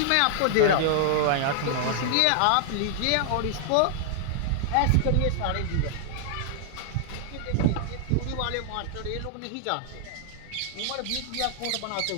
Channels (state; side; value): different; both; correlation -0.01